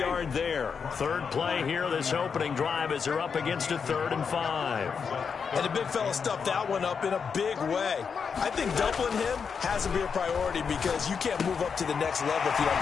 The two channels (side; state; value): right; quieter; 6.1 dB